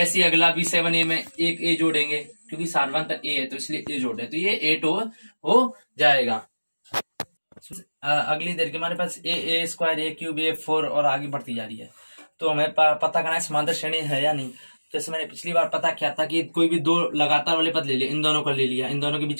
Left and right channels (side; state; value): both; inverted; correlation -1.00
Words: अगला भी 7a में एक a जोड़ेंगे, क्योंकि सारवंतर a है तो इसलिए a जोड़ रहे, तो ये 8 हो जाएगा। अगली देर के हमारे पास a square, a cube, a4 और आगे बढ़ती जा रही है। तो हमें पता करना है समांतर श्रेणी है या नहीं। जैसे मैंने पिछली बार पता किया था कि कोई भी दो लगातार वाले पद ले लिया, इन दोनों को ले लिया, इन दोनों के बीच